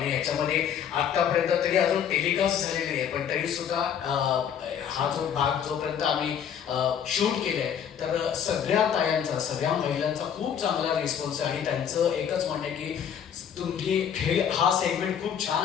याच्यामध्ये आतापर्यंत तरी अजून टेलिकास्ट झालेली नाही, पण तरी सुद्धा हा जो भाग जोपर्यंत आम्ही शूट केलंय, तर सगळ्या तायांचा, सगळ्या महिलांचा खूप चांगला रिस्पॉन्स आहे. आणि त्यांचं एकच म्हणणं आहे की तुम्ही हा सेगमेंट खूप छान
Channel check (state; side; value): quieter; right; 8.5 dB